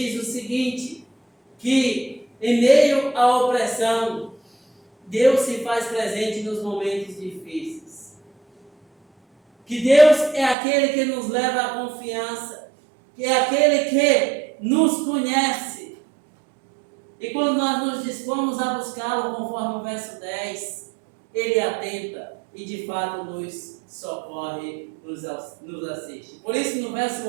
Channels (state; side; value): drops out; left; at 10.6 s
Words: o seguinte, que em meio à opressão, Deus se faz presente nos momentos difíceis. Que Deus é aquele que nos leva à confiança, que é aquele que nos conhece. E quando nós nos dispomos a buscá-lo, conforme o verso 10, Ele atenta e de fato nos socorre, nos assiste. Por isso no verso